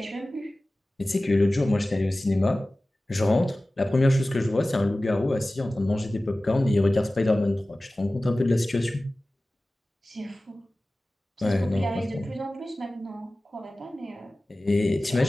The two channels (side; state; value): both; normal; correlation 0.97